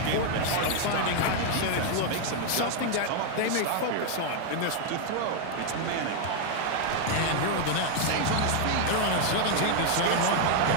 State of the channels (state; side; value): different; both; correlation 0.00